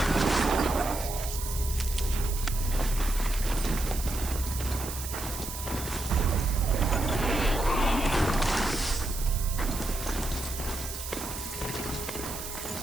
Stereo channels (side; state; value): right; noise; hiss, 8 dB below the sound